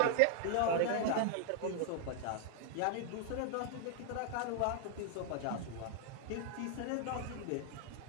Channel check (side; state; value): both; different; correlation 0.00